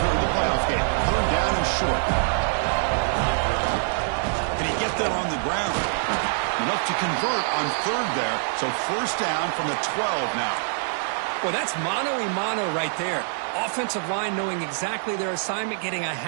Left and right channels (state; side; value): silent; left; digital silence